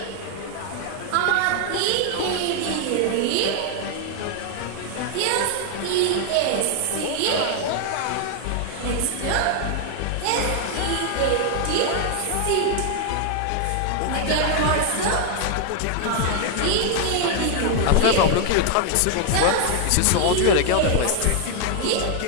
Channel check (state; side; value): different; both; correlation 0.00